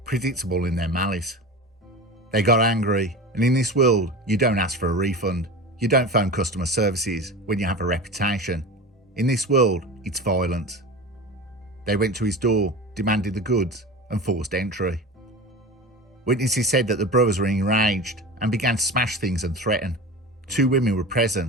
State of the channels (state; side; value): normal; both; correlation 0.31